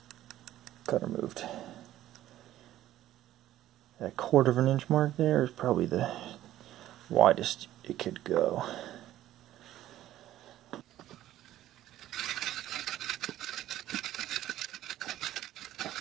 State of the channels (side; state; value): left; quieter; 13.6 dB